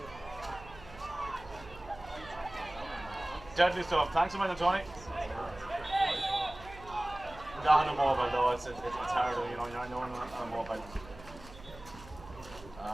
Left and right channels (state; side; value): noise; right; hum, 17 dB below the sound